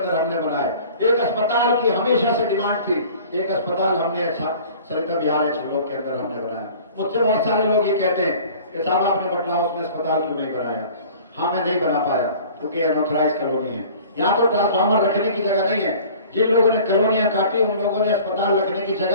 हमने बनाए। एक अस्पताल की हमेशा से डिमांड थी, एक अस्पताल हमने सरिता बिहार ब्लॉक के अंदर हमने बनाया। मुझसे बहुत सारे लोग ये कहते हैं कि साहब आपने बटला हाउस में अस्पताल क्यों नहीं बनाया? हाँ, मैं नहीं बना पाया क्योंकि अनऑथराइज कॉलोनी है, यहाँ तो ट्रांसफार्मर रखने की जगह नहीं है। जिन लोगों ने कॉलोनियां काटी, उन लोगों ने अस्पताल रखने की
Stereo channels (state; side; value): inverted; both; correlation -0.46